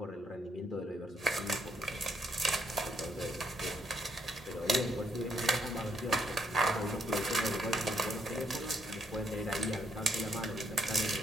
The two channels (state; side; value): normal; both; correlation 0.74